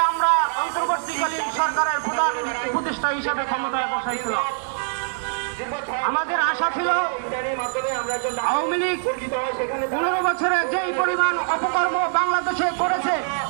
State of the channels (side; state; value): left; silent; digital silence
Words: আমরা অন্তর্বর্তীকালীন সরকারের প্রধান উপদেষ্টা হিসেবে ক্ষমতায় বসাইছিলাম। আমাদের আশা ছিল আওয়ামী লীগ 15 বছরে যেই পরিমাণ অপকর্ম বাংলাদেশে করেছে